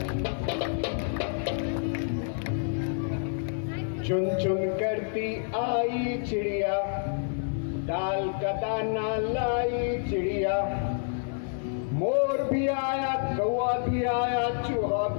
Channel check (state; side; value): silent; right; 58 dB below the other